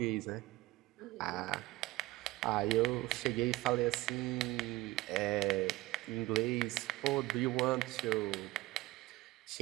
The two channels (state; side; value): quieter; left; 19.5 dB